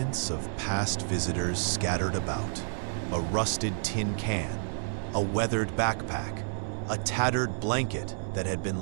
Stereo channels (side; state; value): left; silent; digital silence